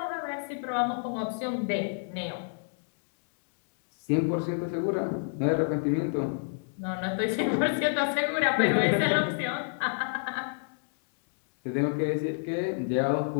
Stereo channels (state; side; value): silent; right; digital silence